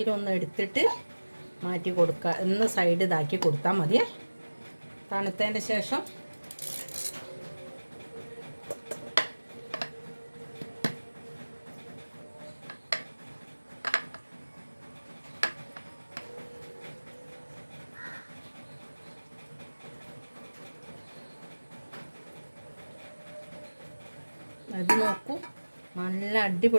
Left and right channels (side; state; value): both; inverted; correlation -1.00